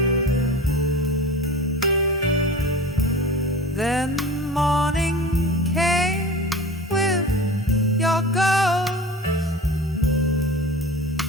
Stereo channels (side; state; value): both; normal; correlation 0.35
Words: Then morning came with your ghost